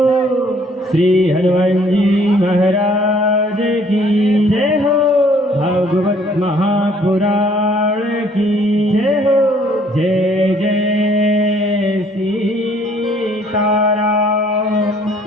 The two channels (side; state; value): both; normal; correlation 0.60